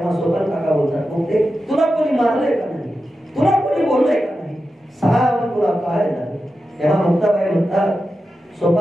सोपान काका बोलतात, मुक्ते तुला कोणी मारलंय का नाही? तुला कोणी बोललंय का नाही? सांग तुला काय झालं? तेव्हा मुक्ताबाई म्हणतात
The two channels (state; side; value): normal; both; correlation 0.91